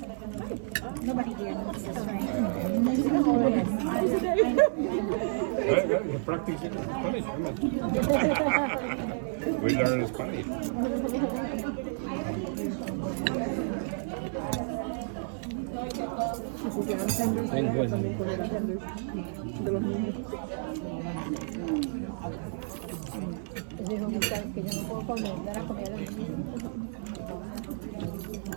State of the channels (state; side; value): silent; left; 57 dB below the other